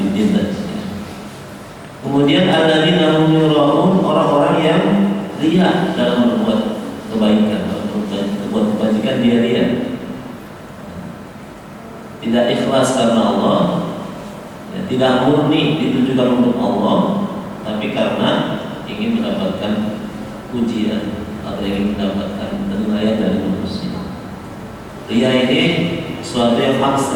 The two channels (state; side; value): identical; both; correlation 1.00